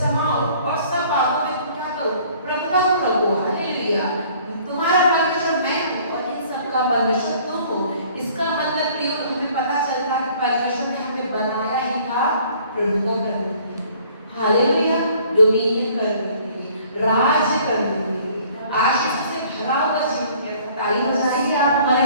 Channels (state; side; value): inverted; both; correlation -0.56